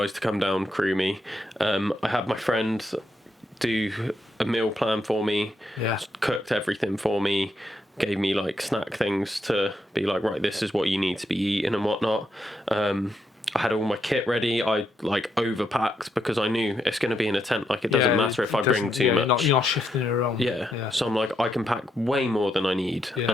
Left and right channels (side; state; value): both; normal; correlation 0.80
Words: to come down, crew me. I had my friend do a meal plan for me. Cooked everything for me. Gave me like snack things to be like, right, this is what you need to be eating and whatnot. I had all my kit ready. I like overpacked because I knew it's going to be in a tent. Like it doesn't matter if I bring too much. You're not shifting it around. Yeah. So I'm like, I can pack way more than I need and